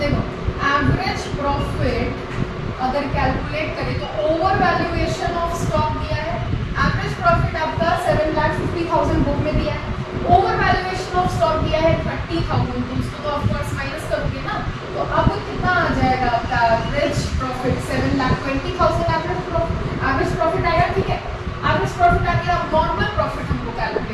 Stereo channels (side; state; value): both; identical; correlation 1.00